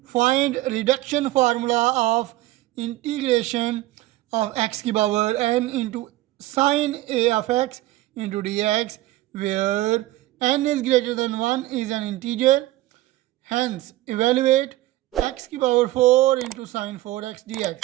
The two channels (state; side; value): quieter; left; 17.0 dB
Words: Find reduction formula of integration of x की power n into sine a of x into d x where n is greater than 1 is an integer. Hence, evaluate x की power 4 into sine 4x dx।